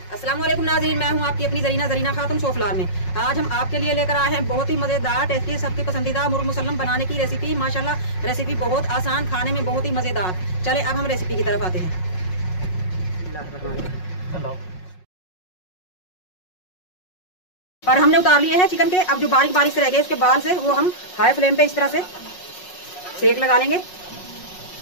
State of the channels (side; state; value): right; late; 5.5 ms